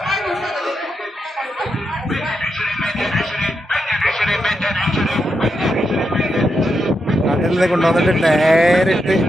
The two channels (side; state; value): both; normal; correlation 0.84